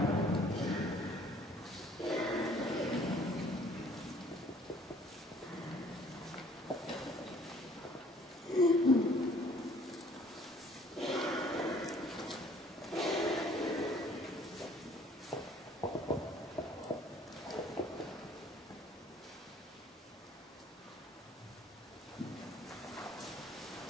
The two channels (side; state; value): both; normal; correlation 0.57